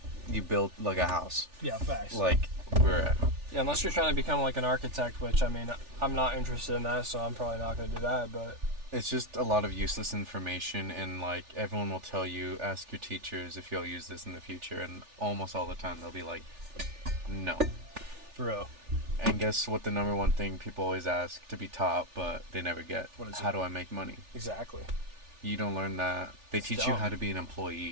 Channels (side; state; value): left; late; 3.4 ms